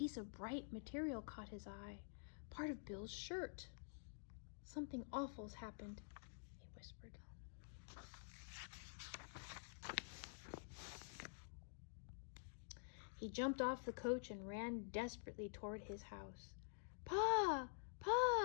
of bright material caught his eye, part of Bill's shirt. Something awful's happened, he whispered. He jumped off the coach and ran desperately toward his house. Pa!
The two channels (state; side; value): silent; right; digital silence